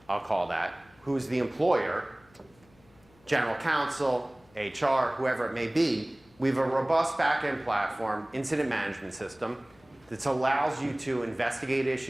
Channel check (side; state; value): left; noise; hum, 30 dB below the sound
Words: I'll call that, who's the employer, general counsel, HR, whoever it may be, We have a robust back-end platform, incident management system, that allows you to investigate